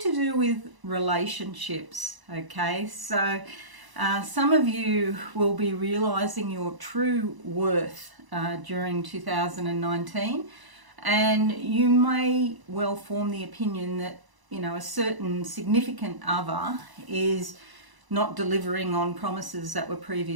do with relationships, okay? So some of you will be realizing your true worth during 2019, and you may well form the opinion that, you know, a certain significant other is not delivering on promises that were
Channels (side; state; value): left; late; 1.0 ms